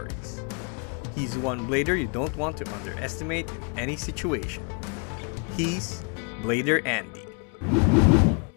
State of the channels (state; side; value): quieter; right; 37.7 dB